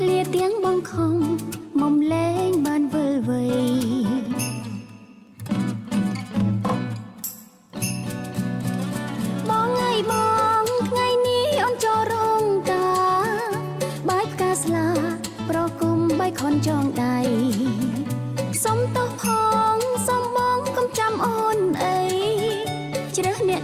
្លាទាំងបងខំមុំលែងបានវិលវ័យបងថ្ងៃថ្ងៃនេះអូនចូលរោងការបាយផ្កាស្លាប្រគុំបៃខនចងដៃសុំទោសផងសុំបងកុំចាំអូនអីជ្រើសអ្នក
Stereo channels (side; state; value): both; identical; correlation 1.00